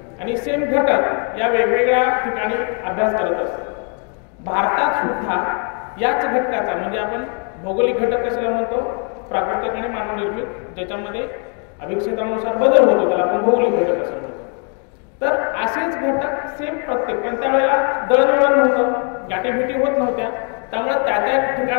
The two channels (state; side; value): quieter; right; 39.1 dB